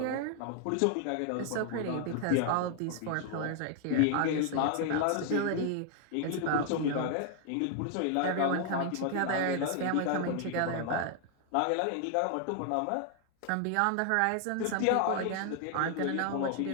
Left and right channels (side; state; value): both; different; correlation 0.00